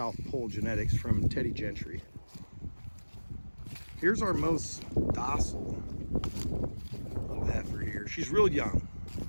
Pole genetics from Teddy Gentry. Here's our most docile little heifer here. She's real young.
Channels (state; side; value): inverted; both; correlation -1.00